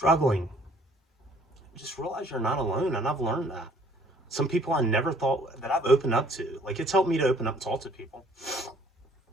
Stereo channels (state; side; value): normal; both; correlation 0.59